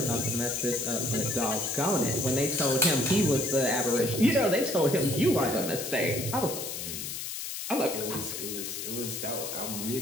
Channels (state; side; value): noise; left; hiss, 6 dB below the sound